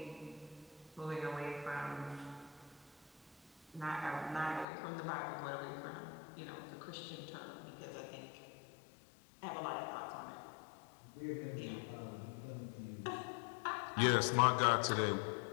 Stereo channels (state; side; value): drops out; right; at 4.7 s